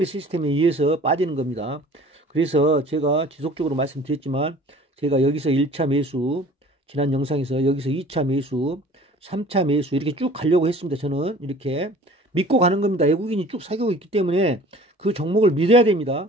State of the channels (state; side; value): normal; both; correlation 0.47